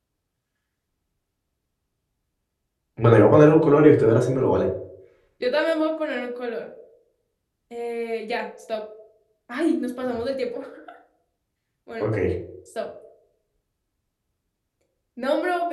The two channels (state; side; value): identical; both; correlation 1.00